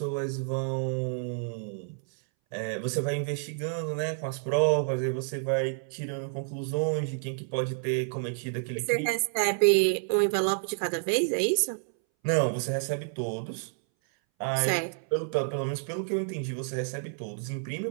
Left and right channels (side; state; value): left; silent; 58 dB below the other